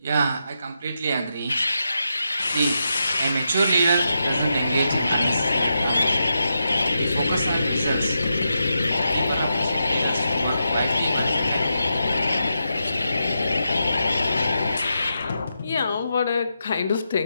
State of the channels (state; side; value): inverted; both; correlation -0.86